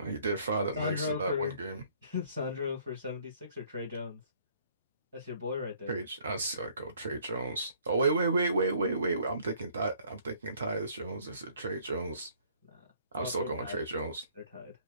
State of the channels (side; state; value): both; inverted; correlation -0.60